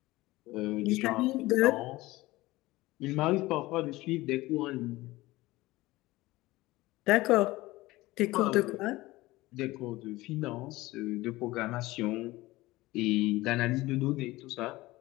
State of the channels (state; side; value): quieter; right; 19.2 dB